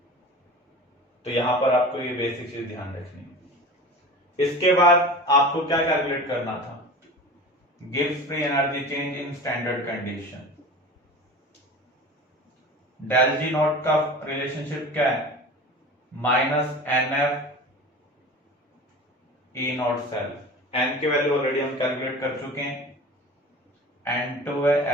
तो यहां पर आपको ये बेसिक चीज ध्यान रखनी है। इसके बाद आपको क्या कैलकुलेट करना था, गिव्स free energy change in standard condition. Del G not का रिलेशनशिप क्या है, minus n F E not cell. N की वैल्यू ऑलरेडी हम कैलकुलेट कर चुके हैं, N2 है।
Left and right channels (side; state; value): both; normal; correlation 0.35